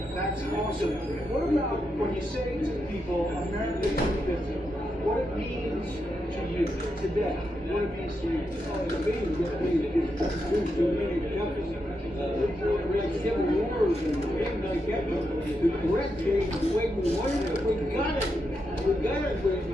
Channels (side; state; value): both; normal; correlation 0.84